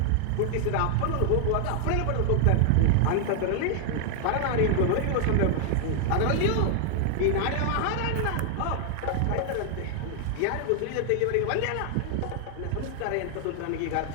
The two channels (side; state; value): both; different; correlation 0.00